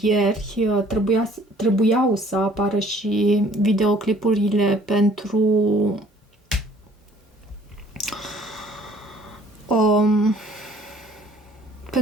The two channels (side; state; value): both; normal; correlation 0.57